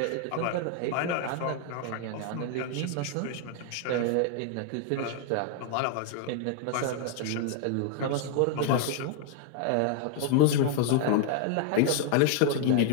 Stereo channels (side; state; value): both; different; correlation 0.00